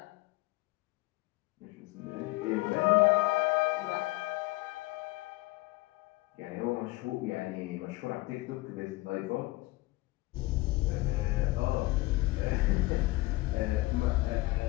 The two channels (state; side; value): quieter; right; 20.8 dB